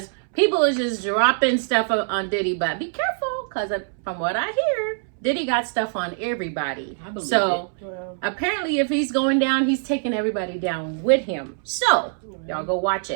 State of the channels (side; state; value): left; silent; 63 dB below the other